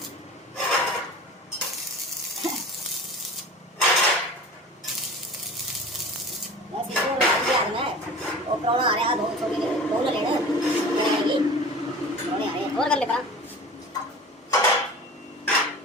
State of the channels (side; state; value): both; normal; correlation 0.38